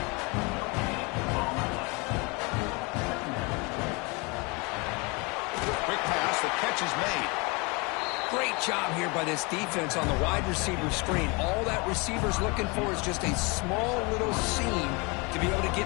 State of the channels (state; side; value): quieter; right; 28.7 dB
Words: Quick pass. The catch is made. Great job here by this defense on the wide receiver screen. All that receiver's looking for is just a small little seam to be able to get